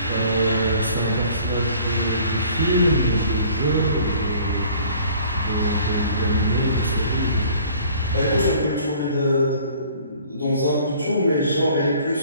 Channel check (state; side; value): inverted; both; correlation -0.53